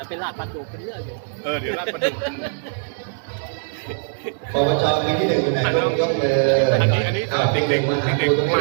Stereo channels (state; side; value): silent; left; digital silence